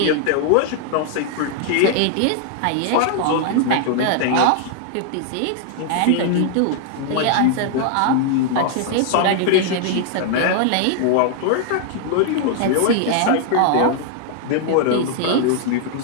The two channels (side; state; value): both; different; correlation 0.00